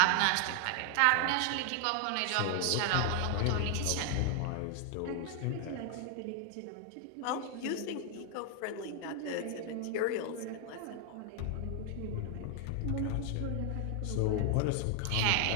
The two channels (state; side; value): different; both; correlation 0.00